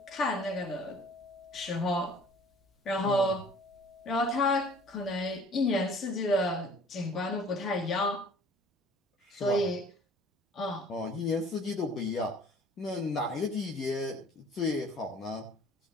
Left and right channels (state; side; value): normal; both; correlation 0.51